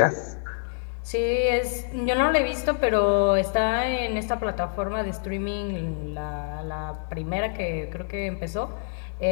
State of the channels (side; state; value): right; silent; digital silence